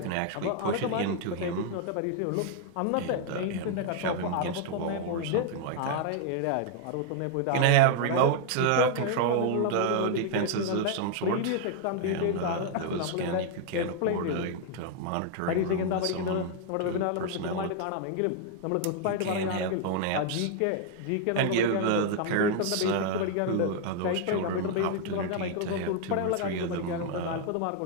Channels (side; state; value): both; different; correlation 0.00